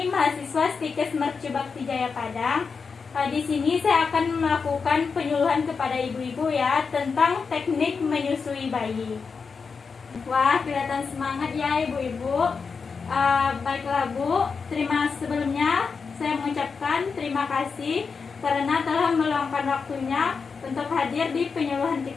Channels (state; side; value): quieter; right; 5.3 dB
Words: mahasiswa Stikes Mercu Bakti Jaya Padang. Di sini saya akan melakukan penyuluhan kepada ibu-ibu ya tentang teknik menyusui bayi. Wah, kelihatan semangat ya ibu-ibu. Baiklah Bu, sebelumnya saya mengucapkan terima kasih karena telah meluangkan waktunya untuk hadir di penyuluhan